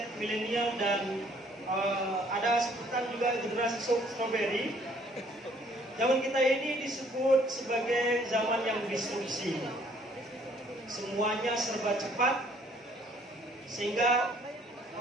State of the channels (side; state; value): both; normal; correlation 0.61